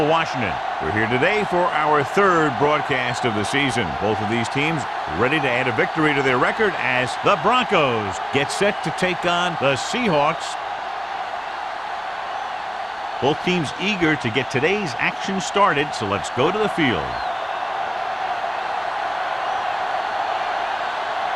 Washington. We're here today for our third broadcast of the season. Both of these teams ready to add a victory to their record as the Broncos get set to take on the Seahawks. Both teams eager to get today's action started, so let's go to the field.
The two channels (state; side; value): identical; both; correlation 1.00